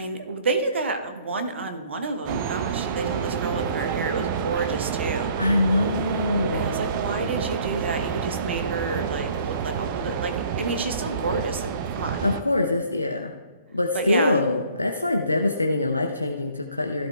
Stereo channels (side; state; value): both; inverted; correlation -0.57